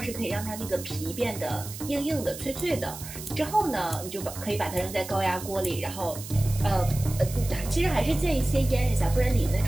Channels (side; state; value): right; noise; hiss, 12 dB below the sound